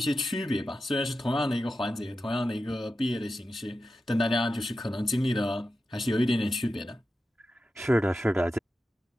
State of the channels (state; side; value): normal; both; correlation 0.91